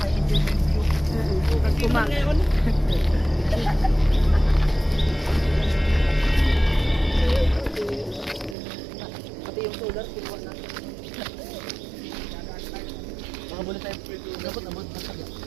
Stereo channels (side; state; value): left; drops out; at 8.6 s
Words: enjoyment view. Pag kumang. Pati yung solar, kinuha na. Makabuli tayo. Dapat naman, masaya.